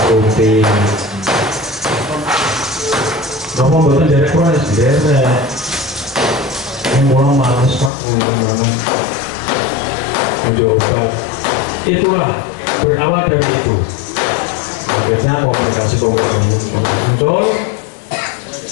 rutin. Kenapa buatan jadi keras? Jadi yang mulai malas Pak, mencoba. Itulah berawal dari itu. Akhirnya komunikasi muncul.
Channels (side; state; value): right; drops out; at 7.9 s